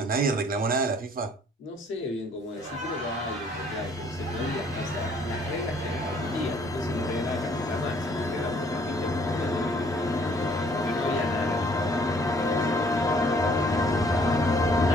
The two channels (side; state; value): both; normal; correlation 0.60